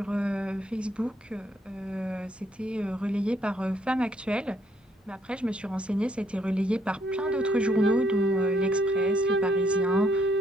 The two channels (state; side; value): normal; both; correlation 0.69